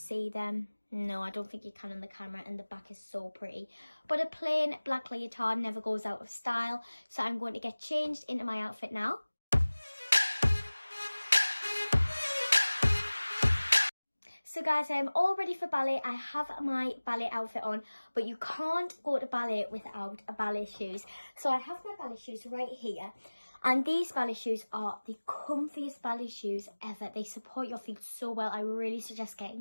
them. No, I don't think you can on the camera, and the back is so pretty. But a plain black leotard never goes out of style, so I'm going to get changed into my outfit now. So guys, I am all ready for ballet. I have my ballet outfit on, but you can't go to ballet without ballet shoes. So I have my ballet shoes right here, and these ballet shoes are the comfiest ballet shoes ever. They support your feet so well. I really suggest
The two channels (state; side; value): inverted; both; correlation -1.00